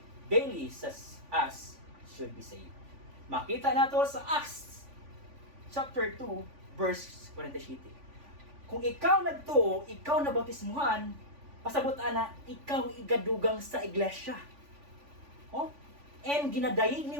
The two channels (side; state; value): left; late; 3.5 ms